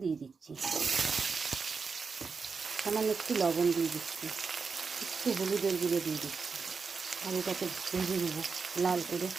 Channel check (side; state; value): left; quieter; 5.1 dB